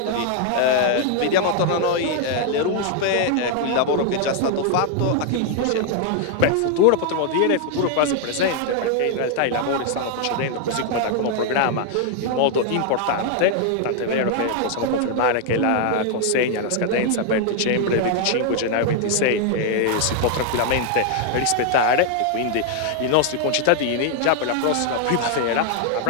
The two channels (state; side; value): different; both; correlation 0.00